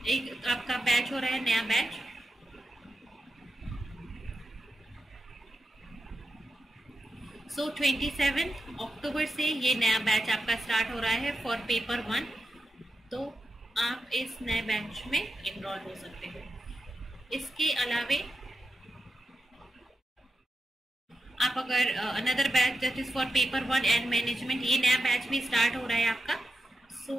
एक आपका बैच हो रहा है, नया बैच, सो 27 अक्टूबर से ये नया बैच आपका स्टार्ट हो रहा है फॉर पेपर 1। तो आप इस नए बैच में इनरोल हो सकते हो। इसके अलावे आप अगर another batch that is for paper 1 and management, ये नया बैच भी स्टार्ट हो रहा है आपका, सो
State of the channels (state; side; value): normal; both; correlation 0.89